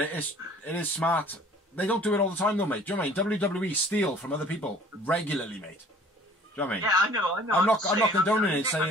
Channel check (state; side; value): normal; both; correlation 0.52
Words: it is smart. They don't do it all the time, though, mate. Do you know what I mean? WWE steal from other people regularly, mate. Do you know what I mean? Yeah, I know. I'm not condoning it,